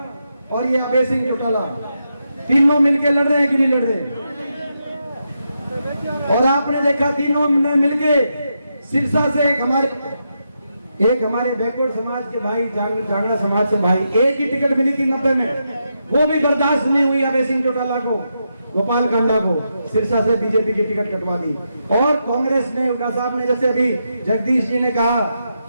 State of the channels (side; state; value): both; inverted; correlation -0.84